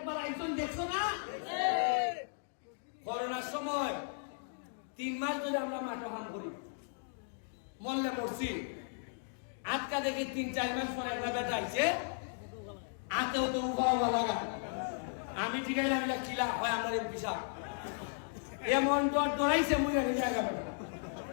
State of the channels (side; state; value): right; silent; digital silence